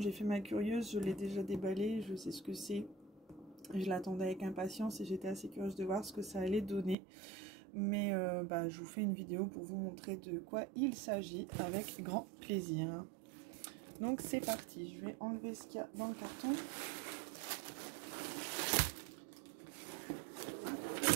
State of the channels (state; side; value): drops out; left; at 7.0 s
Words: fait ma curieuse, je l'ai déjà déballé, je sais ce que c'est. Je l'attendais avec impatience et j'étais assez curieuse de voir ce que ça allait donner. Mais je vous fais une vidéo pour vous montrer de quoi il s'agit avec grand plaisir. Donc c'est parti, je vais enlever ce qu'il y a dans le carton.